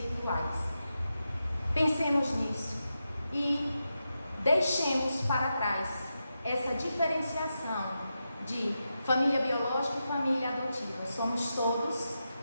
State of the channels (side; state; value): both; inverted; correlation -0.88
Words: Pensemos nisso e deixemos para trás essa diferenciação de família biológica e família adotiva. Somos todos